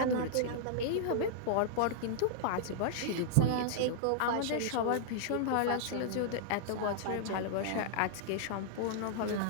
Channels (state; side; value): different; both; correlation -0.01